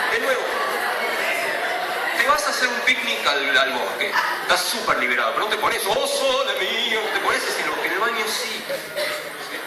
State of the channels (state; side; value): identical; both; correlation 1.00